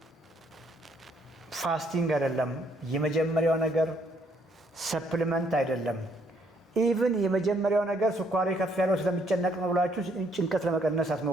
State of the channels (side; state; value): both; normal; correlation 0.68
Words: ፋስቲንግ አይደለም። የመጀመሪያው ነገር ሰፕሊመንት አይደለም። ኢቭን የመጀመሪያው ነገር ስኳሪ ከፍ ያለው ስለሚጨነቅ ነው ብላችሁ ጭንቀት ለመቀነስ